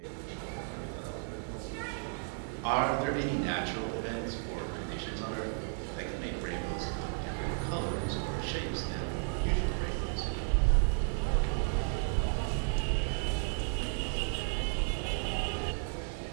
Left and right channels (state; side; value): silent; left; 55 dB below the other